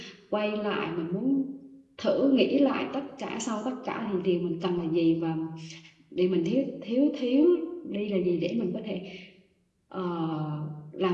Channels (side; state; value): both; identical; correlation 1.00